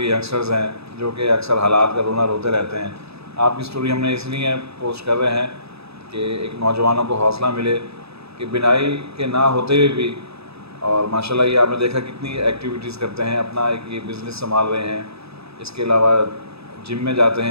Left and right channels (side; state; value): left; late; 0.78 ms